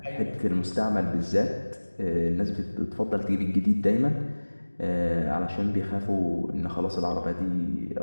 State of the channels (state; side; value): inverted; both; correlation -1.00